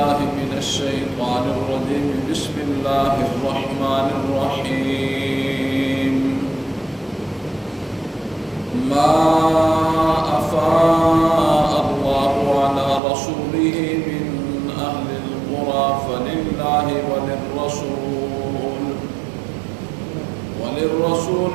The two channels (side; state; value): left; drops out; at 13.0 s